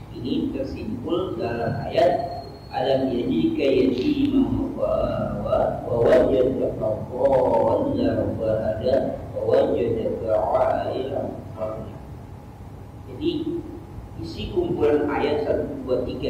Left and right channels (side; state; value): both; identical; correlation 1.00